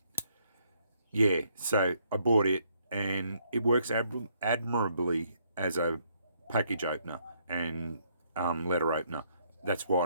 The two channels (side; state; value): both; inverted; correlation -0.70